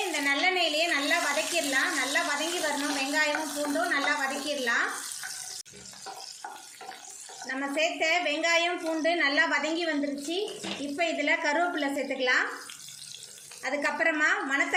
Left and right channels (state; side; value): identical; both; correlation 1.00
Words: இந்த நல்லெண்ணெயிலேயே நல்லா வதக்கிடலாம். நல்லா வதங்கி வரணும். வெங்காயமும் பூண்டும் நல்லா வதக்கிடலாம். நம்ம சேர்த்த வெங்காயம் பூண்டு நல்லா வதங்கி வந்துருச்சு. இப்போ இதில் கருவேப்பிலை சேர்த்துக்கலாம். அதுக்கப்புறமா